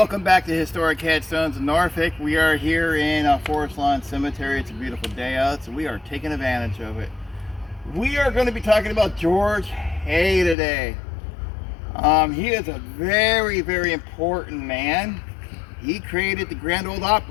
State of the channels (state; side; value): drops out; right; at 10.6 s